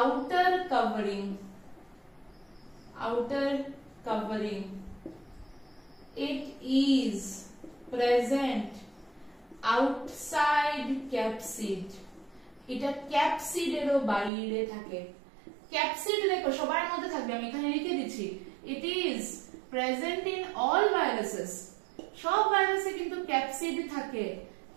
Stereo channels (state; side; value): drops out; left; at 14.3 s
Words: covering, outer covering, it is present outside capsid, এটা ক্যাপসিডেরও বাইরে থাকে। ক্যাপসিড দেখো সবার মধ্যে থাকবে, আমি এখানে লিখে দিচ্ছি, it is present in all viruses, সব ভাইরাসে কিন্তু ক্যাপসিড থাকে,